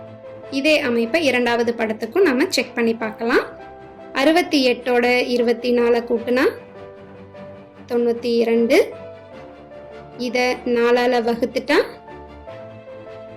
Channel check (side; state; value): both; identical; correlation 1.00